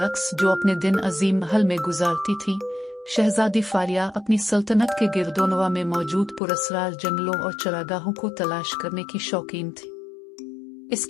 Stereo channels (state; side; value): drops out; right; at 6.4 s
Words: जो अपने दिन अजीम महल में गुजारती थी, शहजादी फारिया अपनी सल्तनत के गिरदोनवा में मौजूद पुरस्रार जंगलों और चरागाहों को तलाश करने की शौकीन थी।